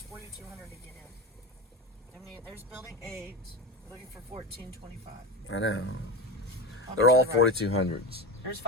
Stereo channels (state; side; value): normal; both; correlation 0.23